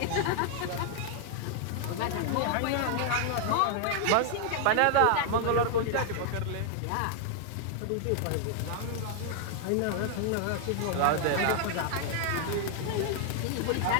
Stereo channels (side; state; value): both; different; correlation 0.00